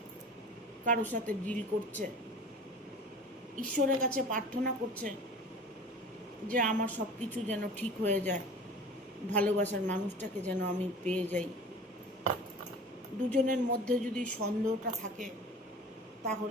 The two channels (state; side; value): normal; both; correlation 0.41